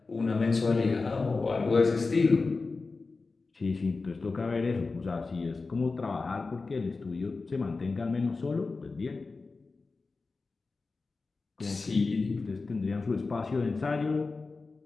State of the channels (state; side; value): quieter; right; 4.0 dB